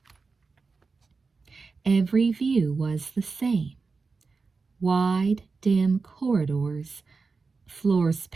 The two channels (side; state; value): left; quieter; 4.4 dB